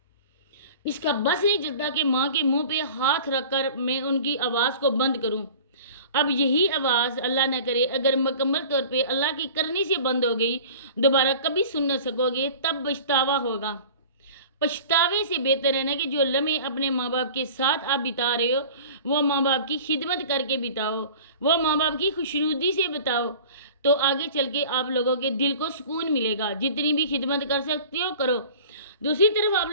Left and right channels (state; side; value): inverted; both; correlation -0.42